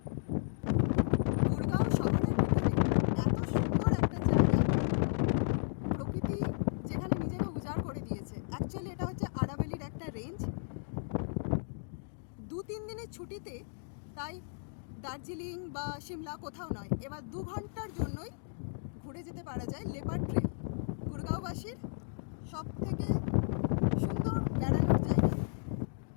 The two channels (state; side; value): silent; right; digital silence